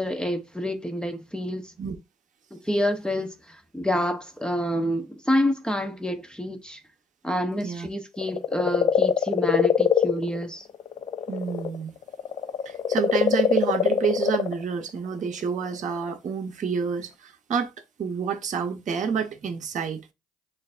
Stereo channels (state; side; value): normal; both; correlation 0.61